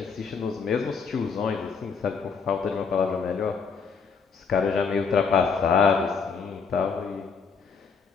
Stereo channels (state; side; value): quieter; right; 5.6 dB